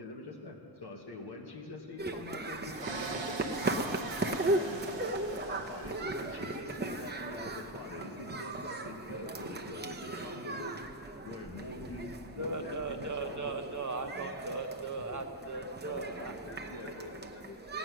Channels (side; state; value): both; normal; correlation 0.08